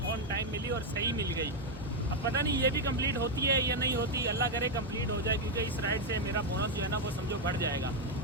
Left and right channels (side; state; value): both; normal; correlation 0.03